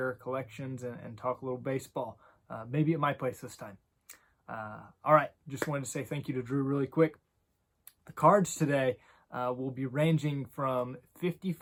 our collections and talk a little baseball. Maybe at my place this time. All right, just wanted to say thank you to Drew really quick. The cards today will be ranging from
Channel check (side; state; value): both; identical; correlation 1.00